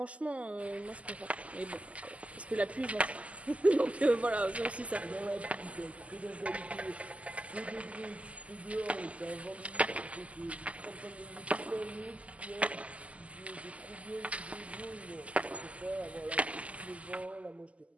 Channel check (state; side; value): late; left; 0.065 ms